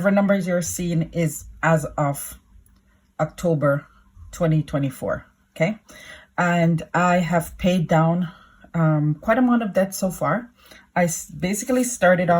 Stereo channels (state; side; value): identical; both; correlation 1.00